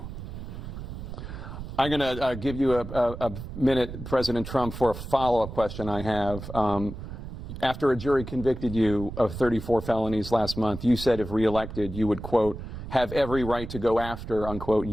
I'm going to give you a minute, President Trump, for a follow-up question I have. After a jury convicted you of 34 felonies last month, you said if reelected, you would, quote, have every right to go after, unquote,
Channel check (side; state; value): right; noise; rumble, 9 dB below the sound